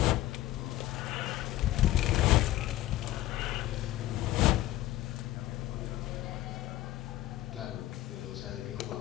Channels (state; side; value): quieter; right; 15.4 dB